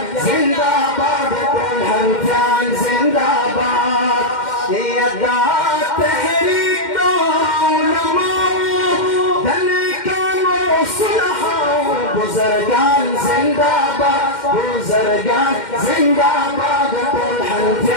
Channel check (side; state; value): right; late; 2.1 ms